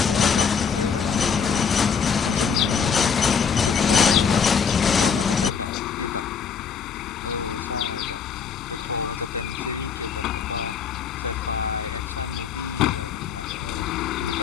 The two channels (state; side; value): quieter; right; 6.5 dB